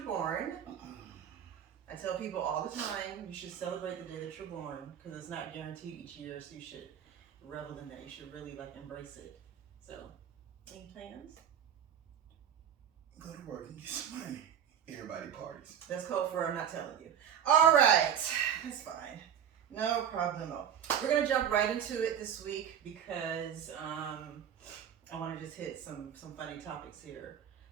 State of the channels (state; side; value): quieter; left; 8.9 dB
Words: born. I tell people all the time, you should celebrate the day that you're born because it's not guaranteed each year, so you should revel in that. You should really embrace it. So, any plans? Go to work and get some money. Everybody parties. That's code for I'm not telling you. All right, that's fine. No problemo. We're gonna jump right into it this week because I want to just hit some funny topics here.